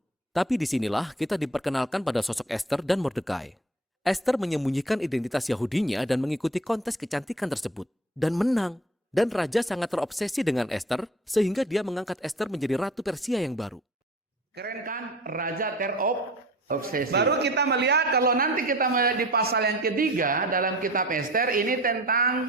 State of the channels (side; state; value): both; normal; correlation 0.43